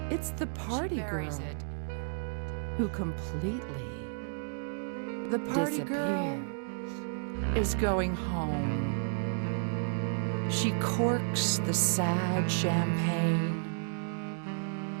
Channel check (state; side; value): silent; left; digital silence